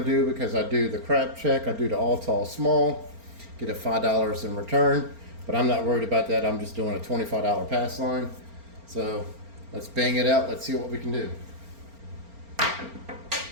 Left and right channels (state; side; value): late; left; 4.4 ms